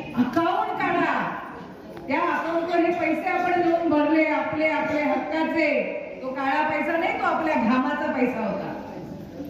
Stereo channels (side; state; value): both; identical; correlation 1.00